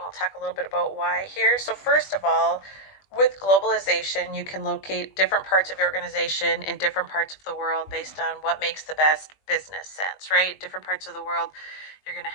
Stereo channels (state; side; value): late; right; 20 ms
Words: we'll talk a little bit about why here. So first of all, with globalization, you can locate different parts of your organization in different parts of the world based on what makes the best business sense, right? Different parts of the world, you're going